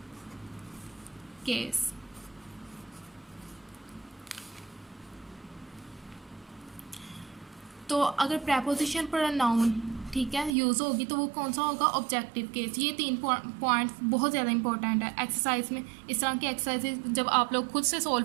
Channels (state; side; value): drops out; left; at 10.6 s